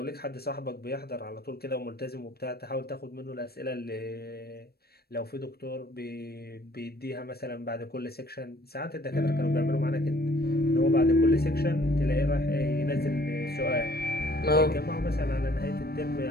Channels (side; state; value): right; late; 0.46 ms